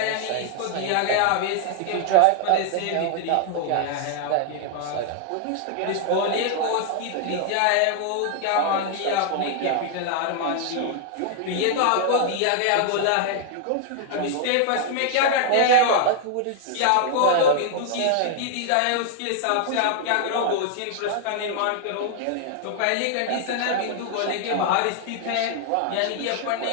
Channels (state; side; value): different; both; correlation 0.00